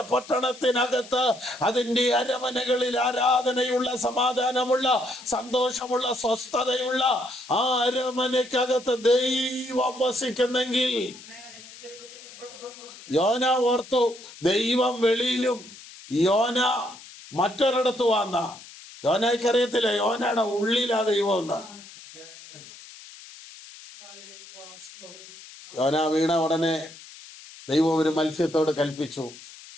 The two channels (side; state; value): left; noise; hiss, 18 dB below the sound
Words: പട്ടണത്തിനകത്ത് അതിന്റെ അരമനകളിൽ ആരാധനയുള്ള, സമാധാനമുള്ള, സന്തോഷമുള്ള, സ്വസ്ഥതയുള്ള ആ അരമനയ്ക്കകത്ത് ദൈവം വസിക്കുന്നെങ്കിൽ യോന ഓർത്തു, ദൈവം വെളിയിലും യോന മറ്റൊരിടത്ത് വന്ന. യോനയ്ക്ക് അറിയത്തില്ല യോനയുടെ ഉള്ളിലാ ദൈവം എന്ന്. യോന വീണ ഉടനെ ദൈവം ഒരു മത്സ്യത്തോട് കൽപ്പിച്ചു,